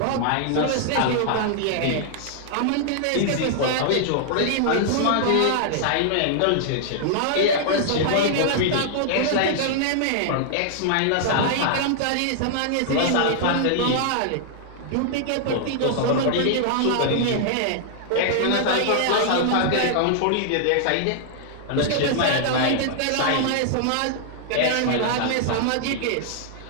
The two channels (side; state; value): both; different; correlation -0.01